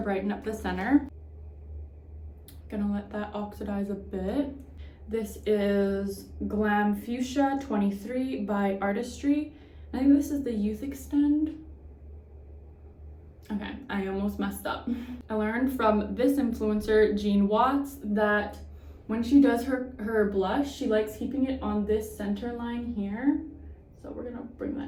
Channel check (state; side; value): identical; both; correlation 1.00